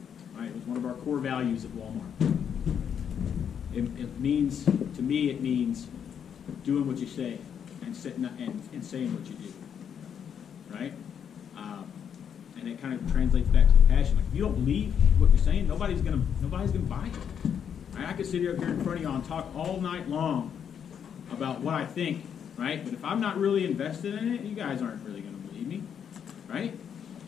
right? It was one of our core values at Walmart. It means, to me, it means doing what you say and saying what you do, right? And it kind of translates back to the passion. Like, if you don't believe what you're saying, nobody's gonna buy it. Right? I could sit here in front of y'all and talk all night long about what I think, right? But if I'm not really invested in it, you guys aren't really gonna believe me, right?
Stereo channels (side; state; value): right; quieter; 8.1 dB